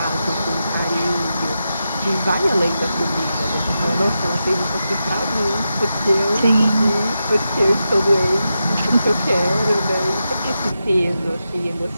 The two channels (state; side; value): inverted; both; correlation -0.88